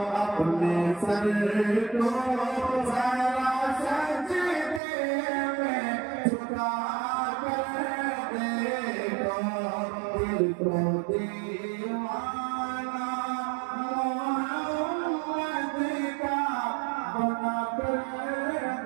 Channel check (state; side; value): drops out; left; at 4.8 s